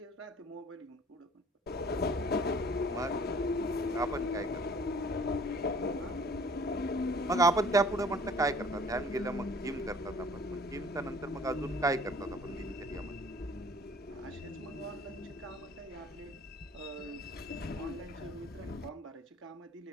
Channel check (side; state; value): both; normal; correlation 0.52